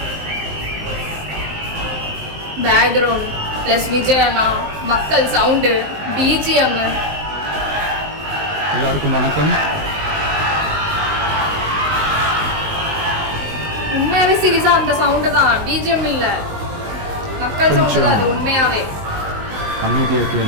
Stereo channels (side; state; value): left; late; 19 ms